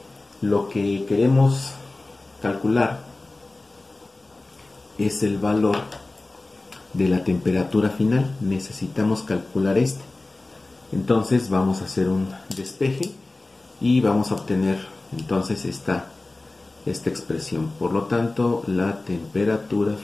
Lo que queremos calcular es el valor de la temperatura final. Necesitamos calcular este. Entonces vamos a hacer un despeje y vamos a obtener entonces esta expresión. Por lo tanto, la temperatura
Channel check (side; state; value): right; quieter; 3.0 dB